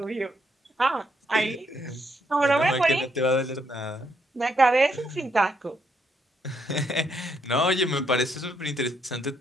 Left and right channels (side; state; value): both; normal; correlation 0.75